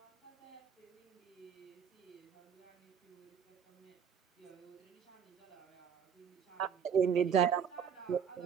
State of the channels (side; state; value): left; quieter; 7.6 dB